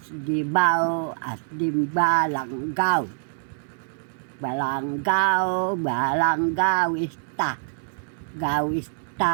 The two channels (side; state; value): left; silent; digital silence